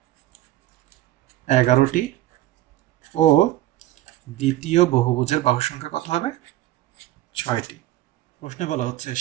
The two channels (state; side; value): quieter; left; 14.8 dB